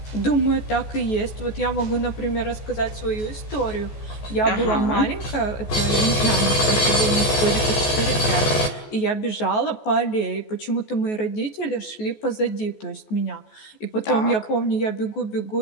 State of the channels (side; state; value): right; late; 14 ms